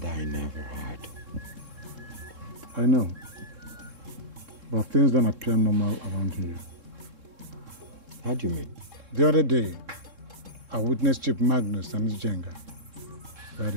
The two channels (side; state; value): left; late; 3.7 ms